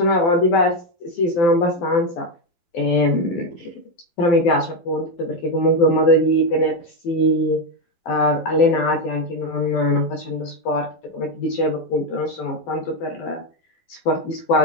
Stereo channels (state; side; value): late; right; 12 ms